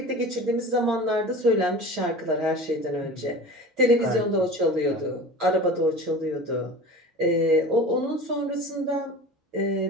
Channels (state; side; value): normal; both; correlation 0.36